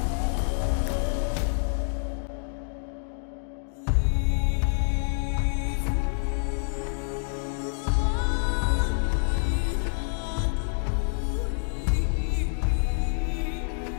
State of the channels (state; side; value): silent; right; digital silence